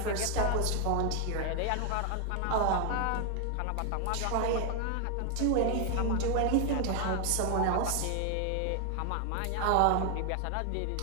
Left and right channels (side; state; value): both; different; correlation 0.00